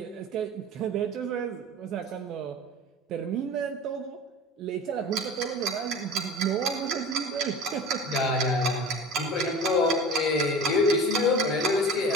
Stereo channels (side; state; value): both; normal; correlation 0.37